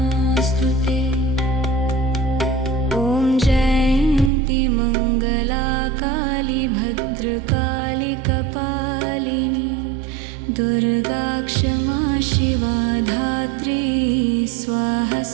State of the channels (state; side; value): drops out; left; at 4.3 s